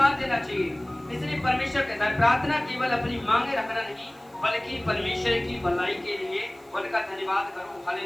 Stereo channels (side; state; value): right; noise; hiss, 29 dB below the sound